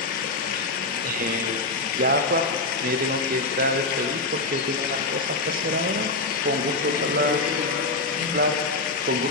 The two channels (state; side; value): quieter; right; 3.5 dB